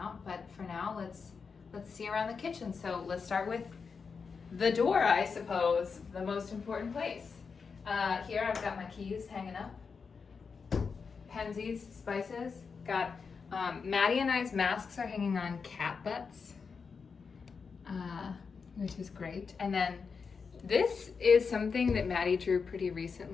But for now, let's see around the kitchen. So let's start with the door, I suppose, the most important place. Here I've got my keys hanging up. Pensies, spices. Got Maddie and I's masks are hanging on cat butts, which is great. And then this is something that Maddie drew pretty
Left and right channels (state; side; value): quieter; right; 5.4 dB